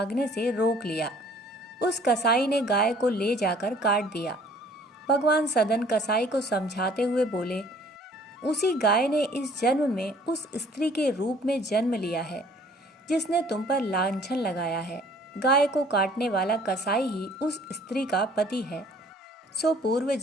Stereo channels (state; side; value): normal; both; correlation 0.55